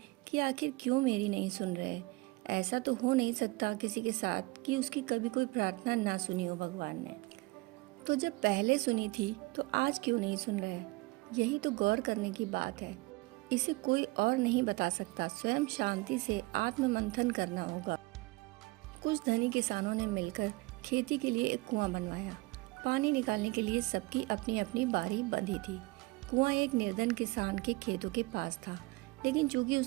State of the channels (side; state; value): left; quieter; 23.2 dB